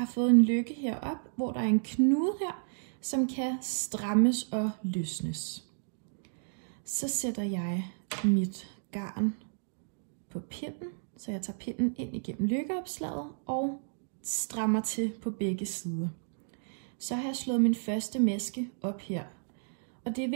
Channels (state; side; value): silent; left; digital silence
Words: fået en lykke herop, hvor der er en knude her, som kan strammes og løsnes. Så sætter jeg mit garn på pinden, så jeg tager pinden ind igennem lykkeopslaget og strammer til på begge sider. Så har jeg slået min første maske op her. Og det er